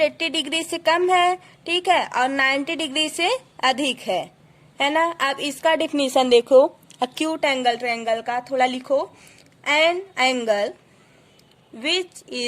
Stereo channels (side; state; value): both; identical; correlation 1.00